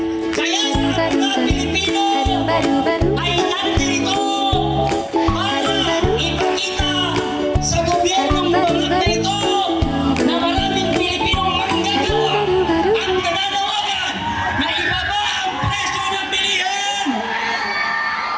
kaya ang mga Pilipino ay nandito para ipakita sa gobyernong bangat na ito na maraming Pilipinong manggagawa ang nananawagan na ibaba ang presyo ng bilihin.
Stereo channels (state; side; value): identical; both; correlation 1.00